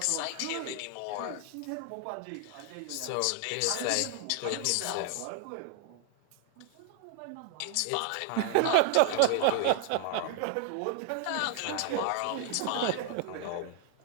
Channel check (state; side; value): different; both; correlation 0.01